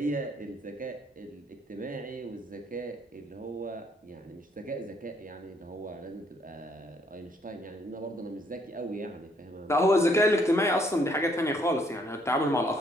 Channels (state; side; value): normal; both; correlation 0.67